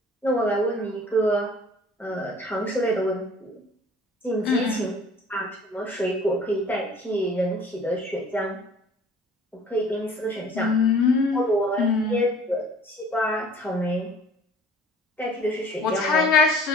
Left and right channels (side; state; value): both; normal; correlation 0.50